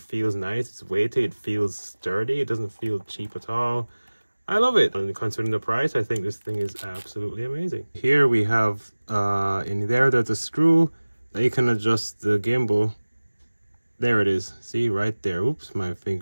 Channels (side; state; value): both; inverted; correlation -1.00